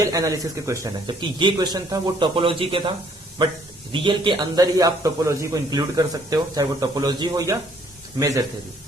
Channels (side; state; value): both; normal; correlation 0.63